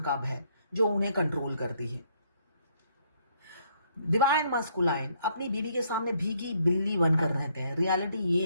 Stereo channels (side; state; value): both; inverted; correlation -0.69